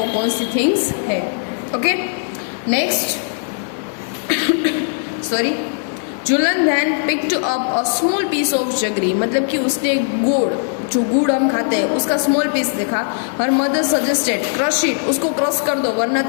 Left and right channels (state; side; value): silent; right; 67 dB below the other